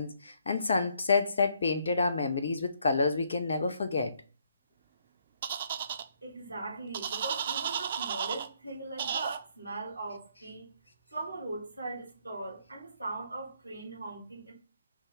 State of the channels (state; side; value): inverted; both; correlation -0.70